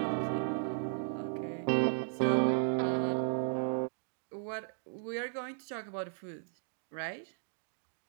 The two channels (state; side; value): silent; left; digital silence